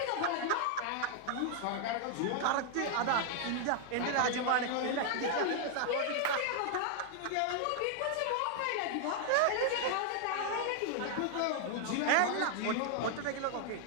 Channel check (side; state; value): both; different; correlation 0.00